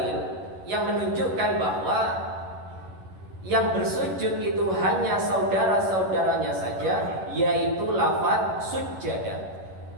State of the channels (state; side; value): late; left; 11 ms